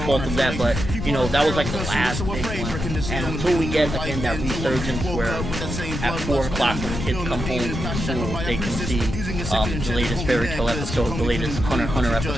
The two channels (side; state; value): left; noise; rumble, 4 dB below the sound